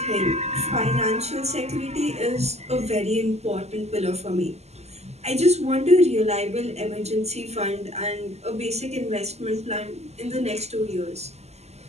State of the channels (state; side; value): late; left; 0.31 ms